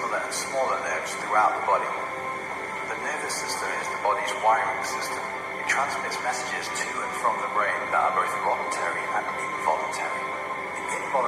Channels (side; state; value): both; identical; correlation 1.00